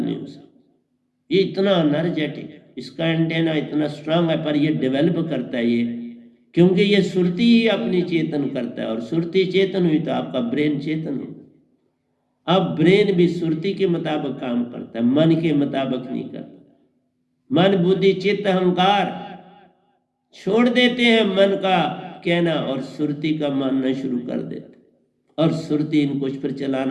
हो सकती। ये इतना एनर्जेटिक, इसका एंटेना इतना स्ट्रांग है, पर ये डेवलप करता है ये, क्योंकि ये सुरती ही अपनी चेतन करता है, और सुरती चेतन हुई तो आपका ब्रेन चेतन हो। अब ब्रेन भी सुरती के मुताबिक काम करता है, मन के मुताबिक नहीं करता। मन बुद्धि चित्त अहंकार छोड़ देते हैं मन का कहना और सुरती का मानना शुरू कर देते, और सुरती इनको फिर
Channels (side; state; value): both; identical; correlation 1.00